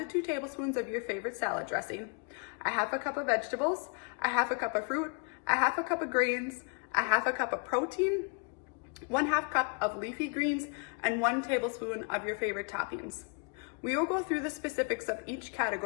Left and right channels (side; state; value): right; quieter; 37.6 dB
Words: 2 tablespoons of your favorite salad dressing, a half a cup of vegetables, a half a cup of fruit, a half a cup of grains, a half a cup of protein, 1/2 cup of leafy greens, and 1 tablespoon of your favorite toppings. We will go through the specifics of each